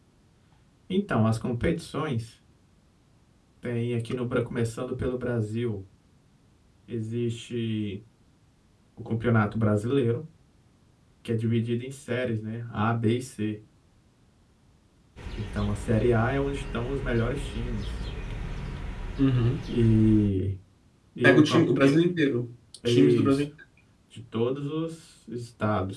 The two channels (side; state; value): both; identical; correlation 1.00